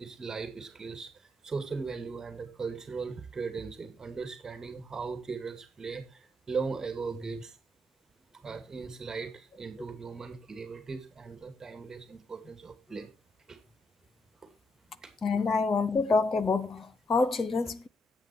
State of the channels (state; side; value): normal; both; correlation 0.78